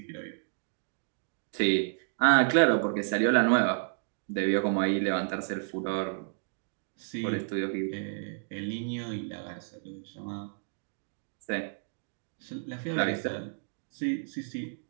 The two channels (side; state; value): left; silent; digital silence